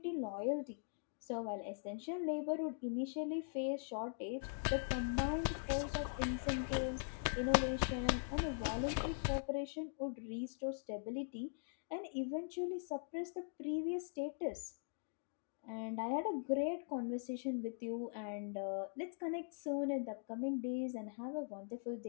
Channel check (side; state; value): right; silent; digital silence